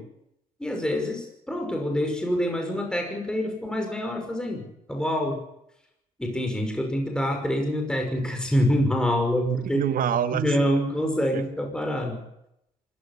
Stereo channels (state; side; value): normal; both; correlation 0.75